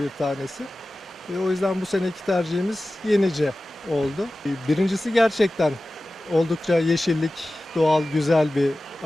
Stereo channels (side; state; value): both; normal; correlation 0.96